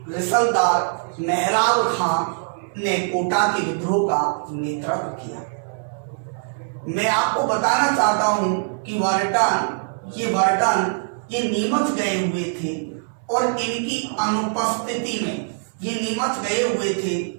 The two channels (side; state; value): left; silent; 64 dB below the other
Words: रिसलदार मेहराब खां ने कोटा के विद्रोह का नेतृत्व किया। मैं आपको बताना चाहता हूं कि वर्टन ये नीमच गए हुए थे और इनकी अनुपस्थिति